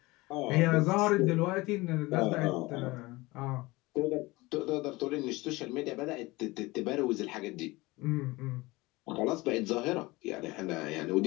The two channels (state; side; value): quieter; right; 21.7 dB